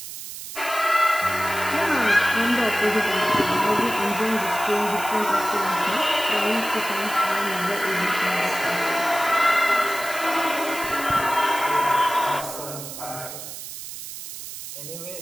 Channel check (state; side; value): noise; right; hiss, 10 dB below the sound